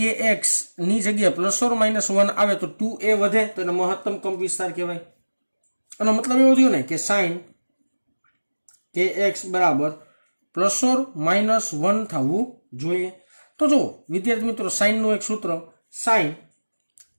ની જગ્યાએ +or -1 આવે તો 2a વધે તો એને મહત્તમ કંપ વિસ્તાર કહેવાય. એનો મતલબ એવો થયો ને કે sin kx બરાબર +or -1 થવું જોઈએ. તો જો વિદ્યાર્થી મિત્રો સાઇનનું એક સૂત્ર, sin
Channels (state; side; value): inverted; both; correlation -1.00